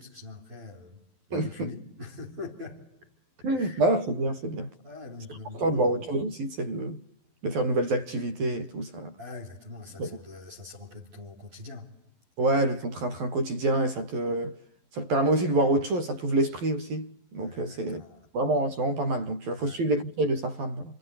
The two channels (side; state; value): left; late; 12 ms